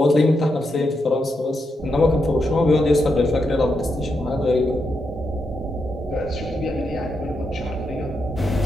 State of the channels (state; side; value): normal; both; correlation 0.83